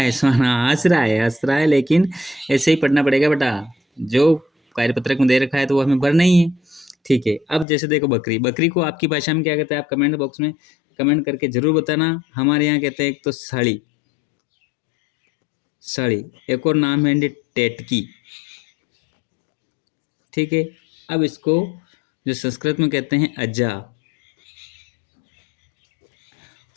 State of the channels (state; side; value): drops out; right; at 7.7 s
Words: स्वाना हंस रहा है, लेकिन ऐसे ही पढ़ना पड़ेगा बेटा। जो कार्यपत्रक में दे रखा है तो वो हमें भरना ही है। ठीक है, अब जैसे देखो बकरी, बकरी को आपकी भाषा में क्या कहते हैं, आप कमेंट बॉक्स में कमेंट करके जरूर बताना। हमारे यहाँ कहते हैं एक तो साड़ी, साड़ी, एक और नाम है टेटकी। ठीक है, अब इसको जो संस्कृत में कहते हैं अज्जा,